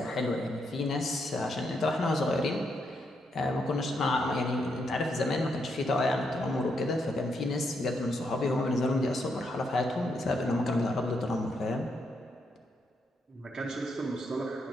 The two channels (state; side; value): normal; both; correlation 0.79